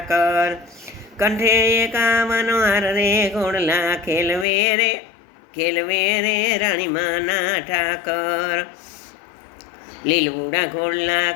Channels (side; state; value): right; drops out; at 4.5 s